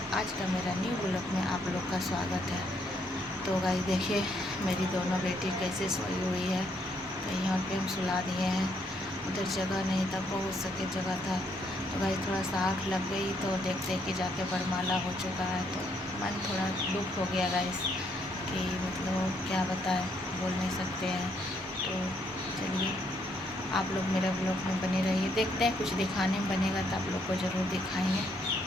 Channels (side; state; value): both; normal; correlation 0.72